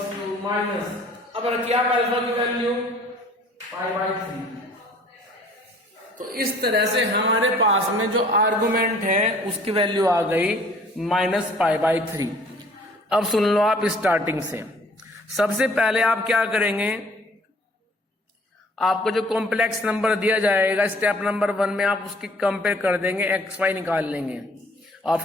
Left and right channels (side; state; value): both; normal; correlation 0.54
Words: to minus, अब रखिए आप अल्फा की वैल्यू पाई बाय 3। तो इस तरह से हमारे पास में जो आर्गुमेंट है उसकी वैल्यू आ गई माइनस पाई बाय 3। अब सुन लो आप स्टार्टिंग से। सबसे पहले आप क्या करेंगे, आपको जो कॉम्प्लेक्स नंबर दिया जाएगा स्टेप नंबर 1 में आप उसकी कंपेयर कर देंगे, एक्स वाई निकाल लेंगे।